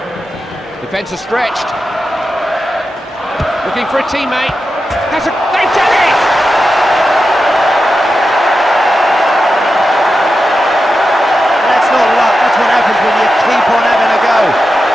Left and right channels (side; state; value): both; normal; correlation 0.90